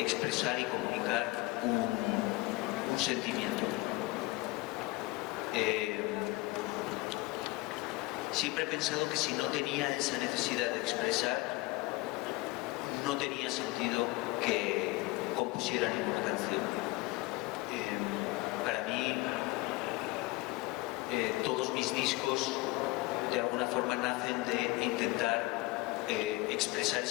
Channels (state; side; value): quieter; right; 21.4 dB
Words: expresar y comunicar un sentimiento. Siempre he pensado que si no tenía esa necesidad de expresar, no tenía sentido que compusiera ninguna canción. Para mí, todos mis discos de alguna forma nacen de intentar expresar